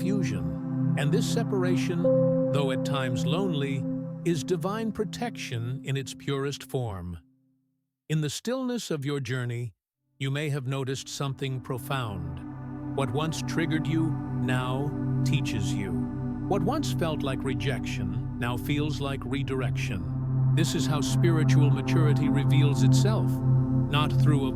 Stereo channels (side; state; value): both; identical; correlation 1.00